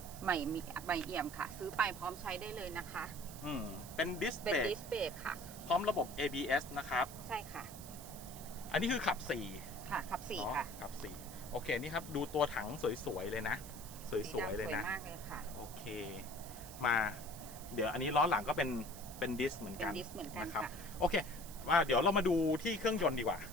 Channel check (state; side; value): noise; right; hiss, 14 dB below the sound